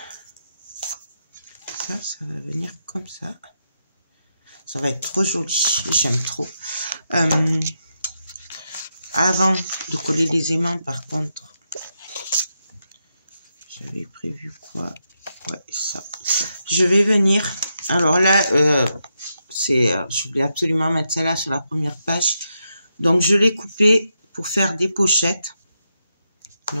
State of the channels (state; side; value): inverted; both; correlation -0.84